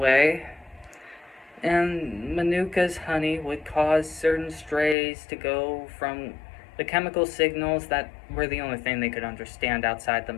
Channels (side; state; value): right; drops out; at 5.0 s